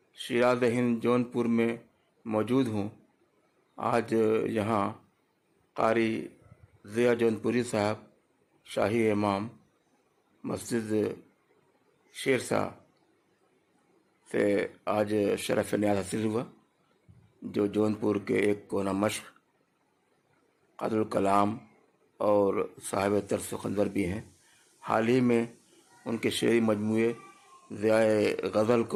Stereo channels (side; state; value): both; identical; correlation 1.00